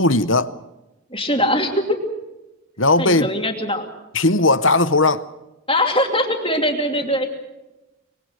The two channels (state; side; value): normal; both; correlation -0.07